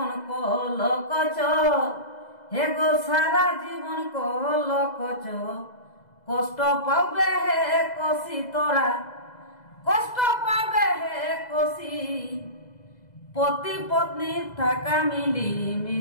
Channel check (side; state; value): right; late; 2.0 ms